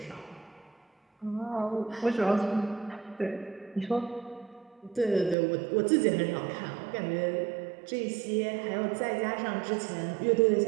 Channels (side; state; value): left; drops out; at 5.4 s